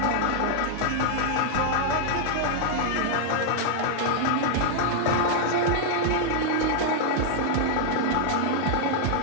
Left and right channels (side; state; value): both; different; correlation -0.01